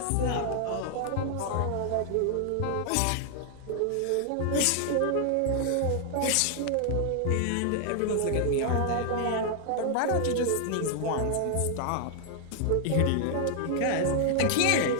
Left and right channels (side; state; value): both; different; correlation 0.00